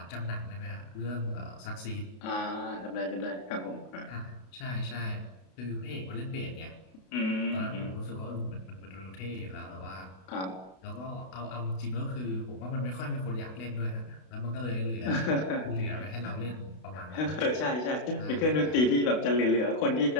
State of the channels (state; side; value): late; right; 32 ms